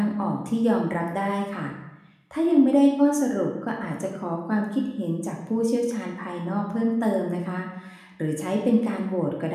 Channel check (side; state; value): both; identical; correlation 1.00